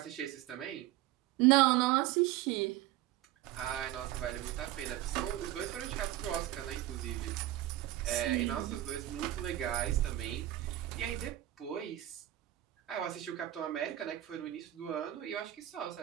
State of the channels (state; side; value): quieter; left; 14.6 dB